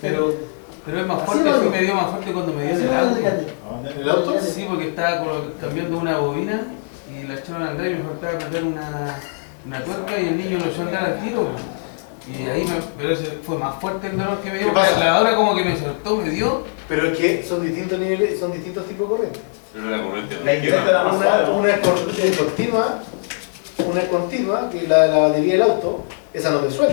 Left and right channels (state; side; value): silent; right; digital silence